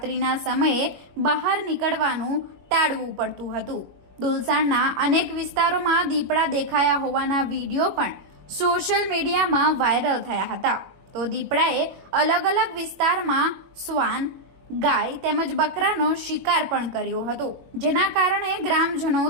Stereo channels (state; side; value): late; left; 21 ms